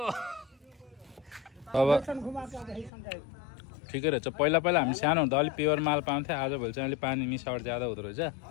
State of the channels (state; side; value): drops out; right; at 2.9 s